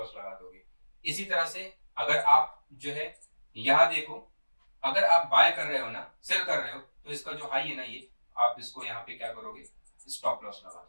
लगा दोगे। इसी तरह से अगर आप जो है यहां देखो, अगर आप बाय कर रहे हो ना, सेल कर रहे हो, तो इसका जो हाई है ना, ये आप इसको यहाँ पे क्या करोगे, स्टॉप लॉस लगा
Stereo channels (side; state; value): both; inverted; correlation -1.00